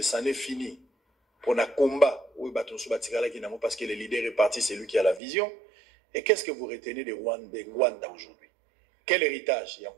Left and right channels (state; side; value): drops out; left; at 5.2 s